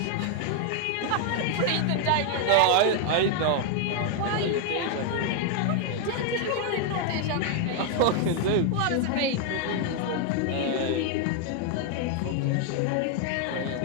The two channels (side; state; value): both; different; correlation 0.00